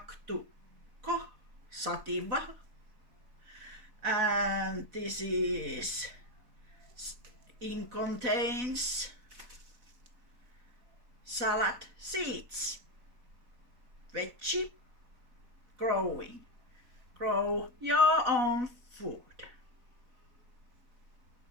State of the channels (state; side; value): late; left; 4.0 ms